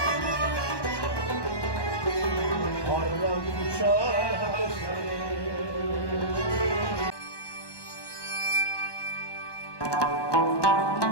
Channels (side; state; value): right; late; 1.2 ms